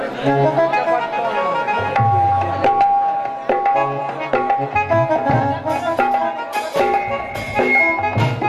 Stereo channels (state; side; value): identical; both; correlation 1.00